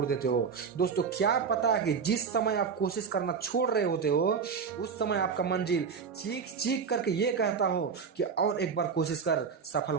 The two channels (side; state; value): left; quieter; 6.0 dB